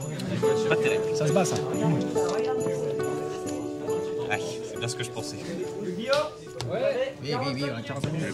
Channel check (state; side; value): identical; both; correlation 1.00